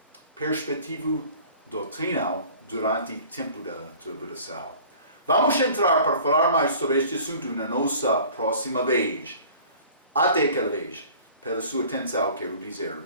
perspectiva doutrinal durante o tempo da tribulação. Vamos entrar para falar mais sobre este assunto na nossa próxima vez. Até aquela vez. Pela sua atenção, quero dizer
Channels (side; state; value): both; inverted; correlation -0.47